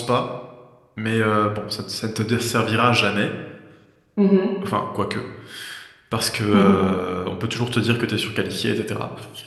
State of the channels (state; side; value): identical; both; correlation 1.00